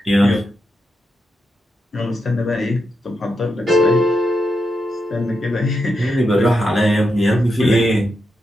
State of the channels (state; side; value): normal; both; correlation 0.85